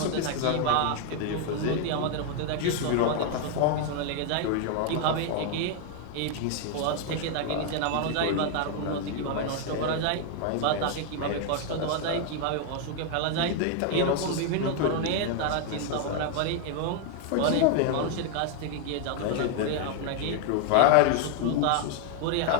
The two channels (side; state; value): both; different; correlation 0.00